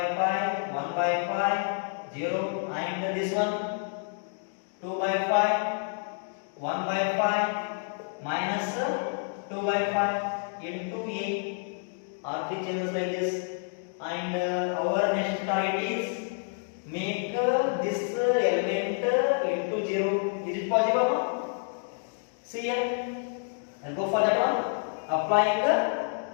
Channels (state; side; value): silent; right; 59 dB below the other